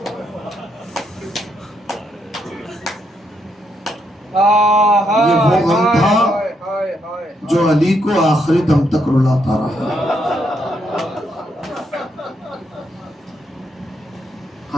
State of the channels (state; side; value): normal; both; correlation 0.77